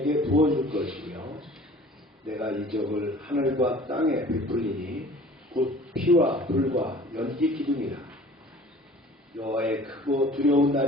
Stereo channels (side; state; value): both; normal; correlation 0.47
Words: 부어줄 것이며 내가 이적을 하늘과 땅에 베풀리니 곧 피와 불과 연기 기둥이라. 여호와의 크고 두려운